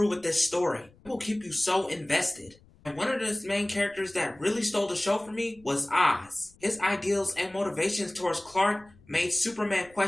with this story. It will keep you so invested. And one of the main characters that really stole the show for me was Oz. His ideals and motivations towards Clark made Superman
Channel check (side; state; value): left; noise; rumble, 28 dB below the sound